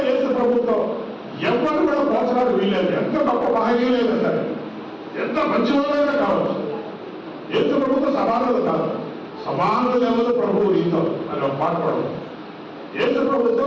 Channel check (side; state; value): both; identical; correlation 1.00